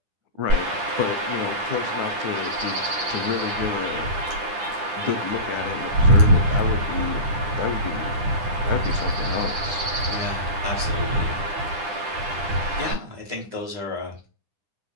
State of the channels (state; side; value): late; left; 10 ms